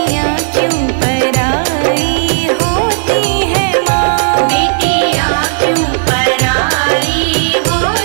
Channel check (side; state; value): left; silent; digital silence